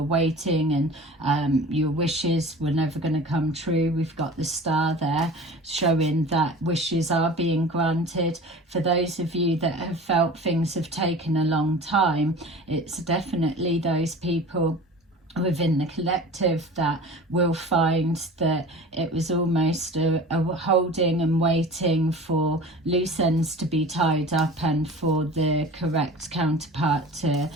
waiting and your wishes were never going to come true, we've got the star there showing that wishes are being granted. For those of you that have felt things have taken a long time, it's definitely those people within the collective that will find that it was almost a holding and waiting for loose ends to be tied up, and for the correct counterpart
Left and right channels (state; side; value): normal; both; correlation 0.39